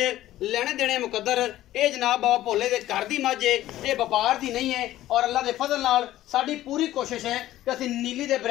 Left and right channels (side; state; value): right; quieter; 14.3 dB